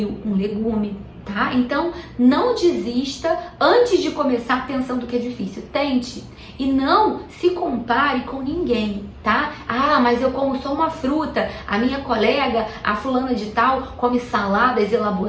um legume, tá? Então, não desista antes de começar pensando que é difícil. Tente e não se compare com ninguém, tá? Ah, mas eu como só uma fruta, a minha colega, a fulana de tal, come saladas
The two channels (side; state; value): both; identical; correlation 1.00